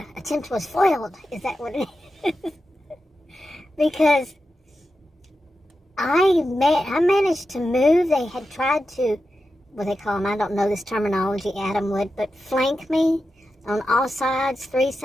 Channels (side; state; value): both; normal; correlation 0.90